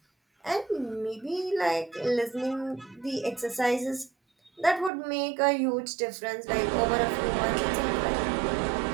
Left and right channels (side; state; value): left; drops out; at 4.9 s